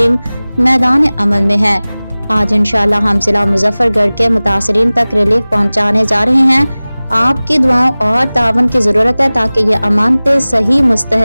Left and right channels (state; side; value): inverted; both; correlation -0.99